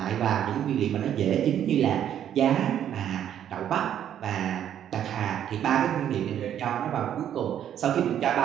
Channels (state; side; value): quieter; left; 10.1 dB